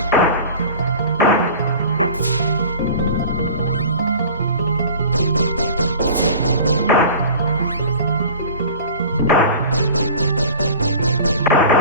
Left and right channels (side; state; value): both; inverted; correlation -0.40